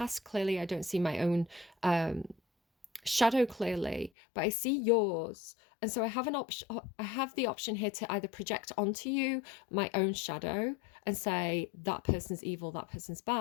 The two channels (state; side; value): drops out; right; at 4.1 s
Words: clearly. I don't see my own shadow clearly, but I see yours. And so I have an option. I have the option here to either project onto you my own shadow and say that person's evil, that person's